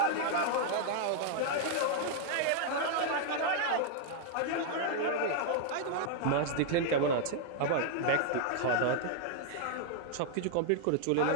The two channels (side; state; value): both; different; correlation 0.00